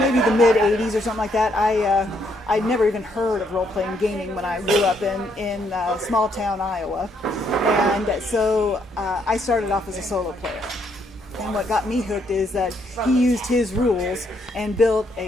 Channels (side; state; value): both; normal; correlation 0.72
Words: the mid 80s or something like that. I'd never even heard of role-playing gaming when I grew up in small town Iowa, and so I started off as a solo player. And what got me hooked is that he used his rules and built